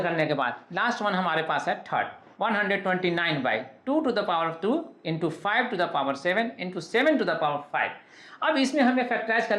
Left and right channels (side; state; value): both; identical; correlation 1.00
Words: करने के बाद लास्ट वन हमारे पास है third, 129/2 to the power 2 × 5 to the power 7 × 7 to the power 5। अब इसमें हमें फैक्टराइज